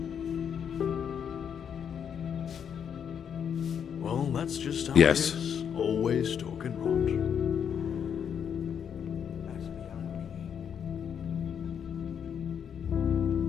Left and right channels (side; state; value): right; quieter; 7.9 dB